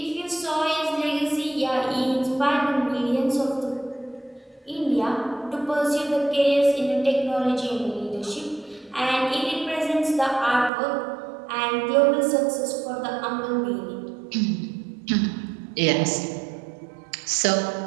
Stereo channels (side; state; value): left; drops out; at 10.7 s